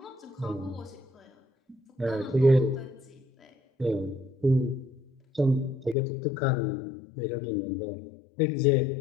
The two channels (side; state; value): right; drops out; at 6.0 s